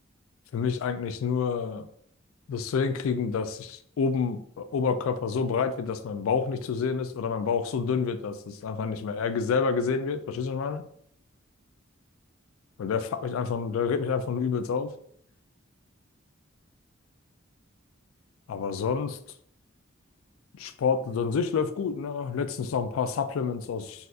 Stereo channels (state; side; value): quieter; right; 5.4 dB